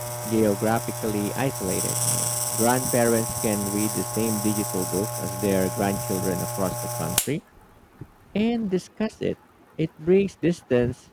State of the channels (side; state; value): both; identical; correlation 1.00